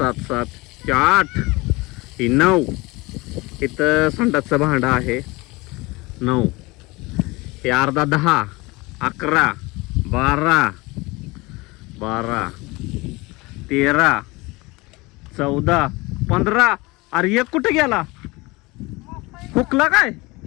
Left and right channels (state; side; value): quieter; right; 23.5 dB